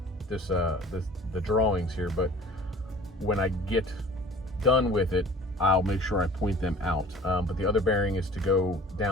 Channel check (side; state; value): both; normal; correlation 0.46